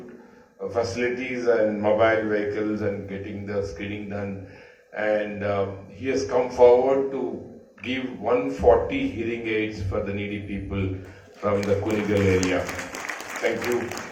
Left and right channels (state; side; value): identical; both; correlation 1.00